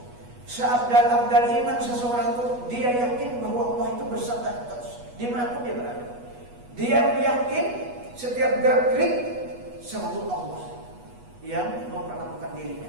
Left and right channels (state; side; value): late; left; 8.2 ms